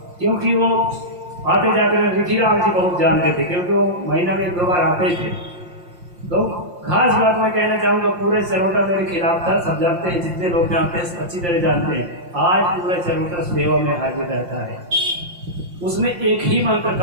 क्योंकि वो आते जाते हैं। रिखीराम जी बहुत जानते थे, क्योंकि वो महीना में 2 बार आते थे। तो खास बात मैं कहना चाहूँगा, पूरे चरोटा मेरे खिलाफ था, सब जानते हैं, जितने लोग जानते हैं अच्छी तरह जानते हैं। आज पूरा चरोटा सेवा में हाजिर रहता है। उसने एक ही मंत्र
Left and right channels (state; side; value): late; left; 5.7 ms